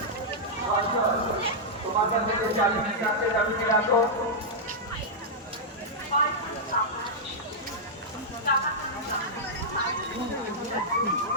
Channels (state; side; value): normal; both; correlation -0.08